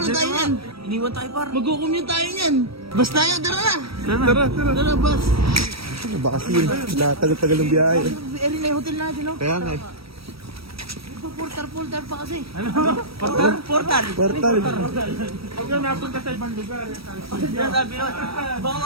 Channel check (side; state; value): left; late; 0.76 ms